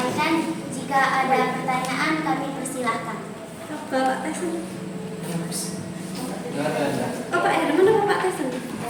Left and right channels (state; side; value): identical; both; correlation 1.00